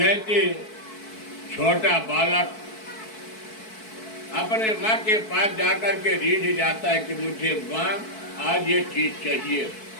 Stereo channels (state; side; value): late; right; 4.6 ms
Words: छोटा बालक अपने माँ के पास जाकर के रीझ जाता है कि मुझे माँ आज ये चीज चाहिए,